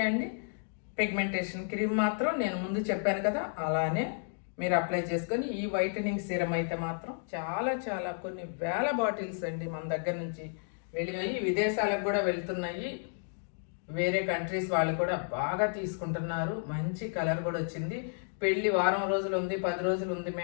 అండి, పిగ్మెంటేషన్ క్రీమ్ మాత్రం నేను ముందు చెప్పాను కదా, అలానే మీరు అప్లై చేసుకొని ఈ వైటనింగ్ సీరం అయితే మాత్రం చాలా కొన్ని వేల బాటిల్స్ అండి మన దగ్గర నుంచి వెళ్ళినాయి, విదేశాలకు కూడా వెళ్తున్నాయి. వేరే కంట్రీస్ వాళ్ళు కూడా బాగా తీసుకుంటున్నారు. మంచి కలర్ కూడా వచ్చింది. పెళ్ళి వారం రోజులు ఉంది, 10 రోజులు ఉంది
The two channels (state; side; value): silent; right; digital silence